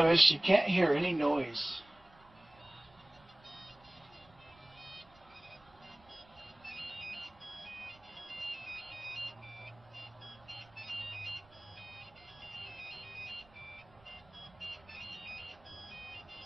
you can't hear any noise.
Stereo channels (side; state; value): right; noise; rumble, 27 dB below the sound